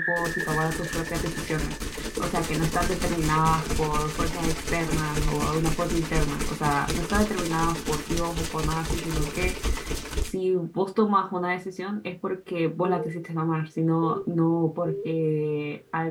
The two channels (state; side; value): identical; both; correlation 1.00